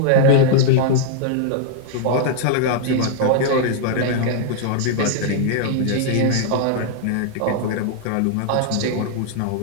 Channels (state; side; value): different; both; correlation -0.01